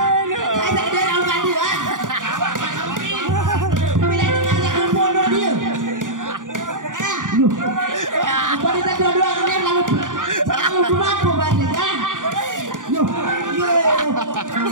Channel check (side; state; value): left; late; 0.88 ms